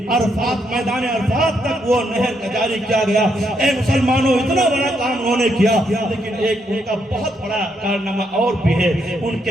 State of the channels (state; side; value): normal; both; correlation 0.77